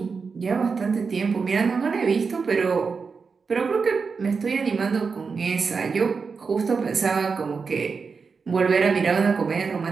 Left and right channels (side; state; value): left; quieter; 5.1 dB